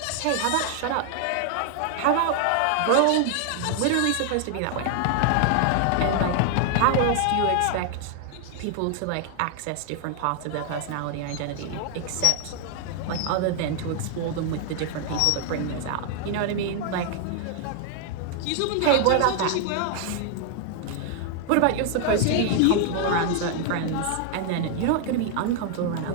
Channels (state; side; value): different; both; correlation 0.00